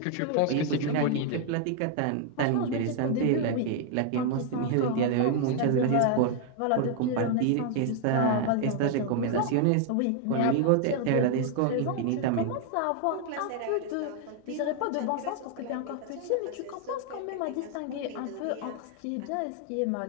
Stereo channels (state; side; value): different; both; correlation 0.00